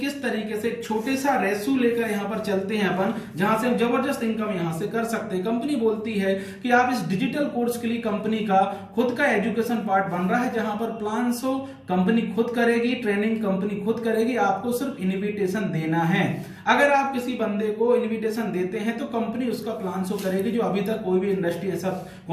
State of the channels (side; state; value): both; identical; correlation 1.00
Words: तरीके से छोटे सा रेशो लेकर यहाँ पर चलते हैं अपन, जहां से हम जबरदस्त इनकम यहाँ से कर सकते हैं। कंपनी बोलती है कि आप इस डिजिटल कोर्स के लिए कंपनी का खुद का एजुकेशन पार्ट बन रहा है, जहां पर प्लान शो कंपनी खुद करेगी, ट्रेनिंग कंपनी खुद करेगी, आपको सिर्फ इन्विटेशन देना है। अगर आप किसी बंदे को इन्विटेशन देते हैं तो कंपनी उसका प्लान शो करेगी, जो अभी तक कोई भी इंडस्ट्री ऐसा